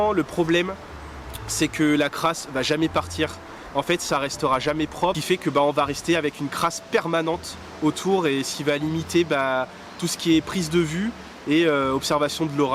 le problème, c'est que la crasse va jamais partir. En fait, ça restera jamais propre, ce qui fait que on va rester avec une crasse permanente autour, et ce qui va limiter tout ce qui est prise de vue et observation de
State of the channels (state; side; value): identical; both; correlation 1.00